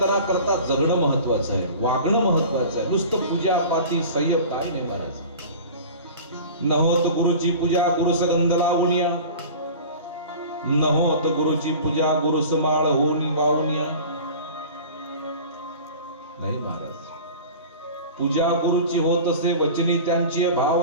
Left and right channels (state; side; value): inverted; both; correlation -0.38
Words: जगणं महत्वाचं आहे, वागणं महत्वाचं आहे. नुसतं पूजा पाठी संयम काही नाही महाराज. न होत गुरुची पूजा गुरु सगंध लावणिया, न होत गुरुची पूजा गुरु समाळ होऊन वाहुनिया. नाही महाराज, पूजा गुरुची होत असे वचनी त्यांची